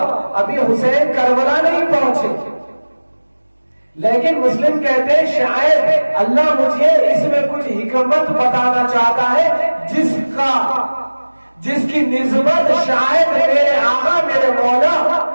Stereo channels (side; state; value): both; inverted; correlation -1.00